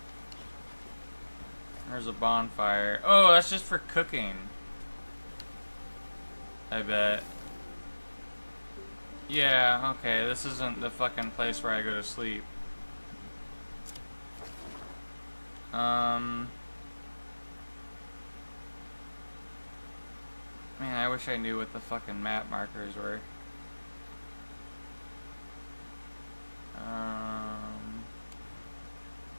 There's a bonfire. Oh, that's just for cooking. I bet. Yeah, okay, this isn't the fucking place where I go to sleep. Man, I wish I knew what the fucking map markers were.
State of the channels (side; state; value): both; inverted; correlation -1.00